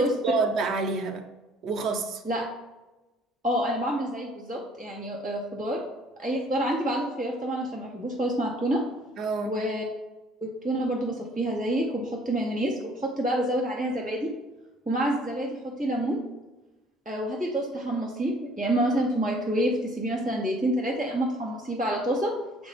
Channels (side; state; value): both; normal; correlation 0.57